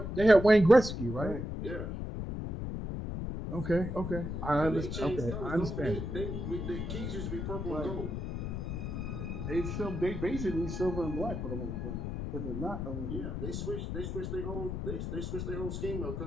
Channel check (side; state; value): left; noise; rumble, 4 dB below the sound